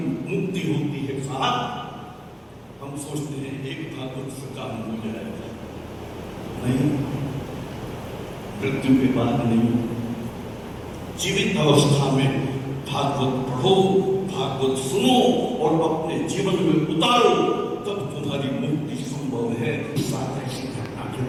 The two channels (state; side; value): identical; both; correlation 1.00